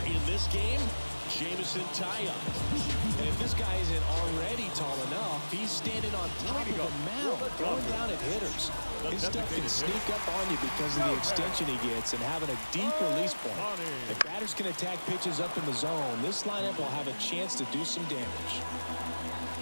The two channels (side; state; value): both; inverted; correlation -1.00